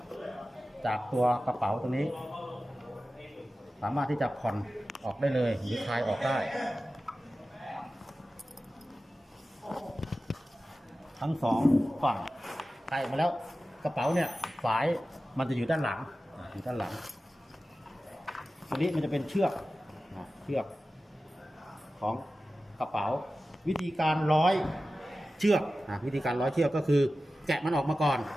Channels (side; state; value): both; normal; correlation 0.95